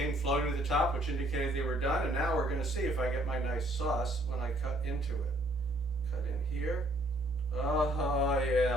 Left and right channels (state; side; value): normal; both; correlation 0.63